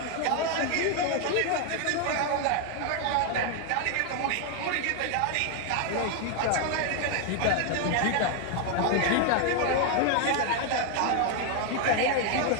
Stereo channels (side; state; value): both; different; correlation 0.01